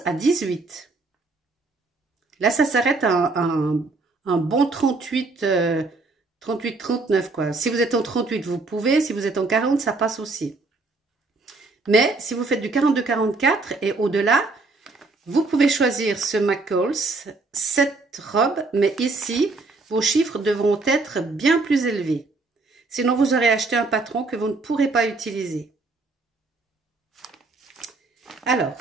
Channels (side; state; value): left; quieter; 3.6 dB